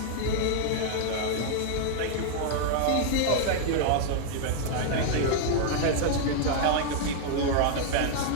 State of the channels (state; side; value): different; both; correlation 0.00